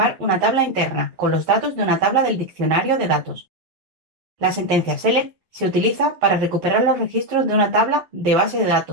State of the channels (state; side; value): late; left; 11 ms